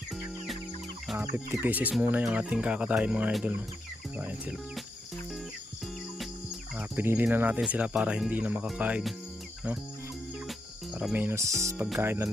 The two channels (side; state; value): both; normal; correlation 0.82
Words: 50 pieces muna yung ating kakatayin mga idol, no? So ayan sila. Pinili na natin sila para hindi na makakain, no? Para menos pagkain na